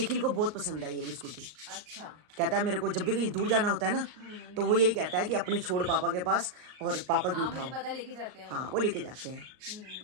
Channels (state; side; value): late; left; 38 ms